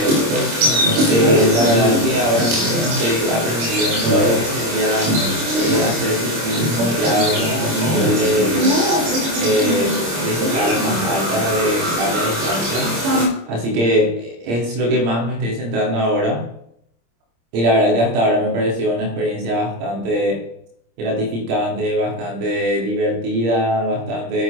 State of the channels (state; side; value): late; left; 26 ms